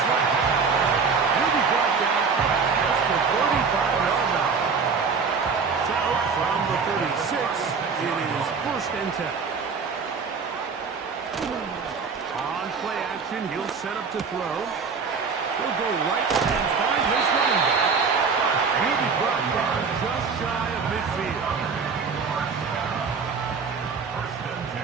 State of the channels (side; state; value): left; quieter; 5.3 dB